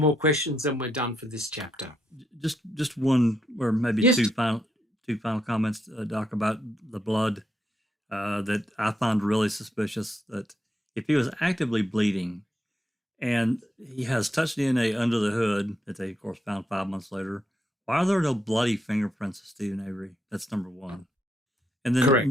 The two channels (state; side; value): normal; both; correlation 0.80